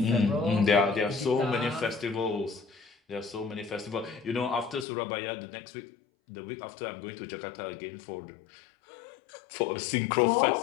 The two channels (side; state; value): right; drops out; at 4.9 s